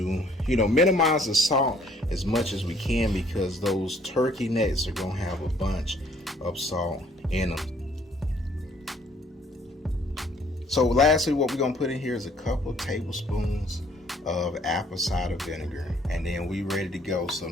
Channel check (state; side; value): normal; both; correlation 0.61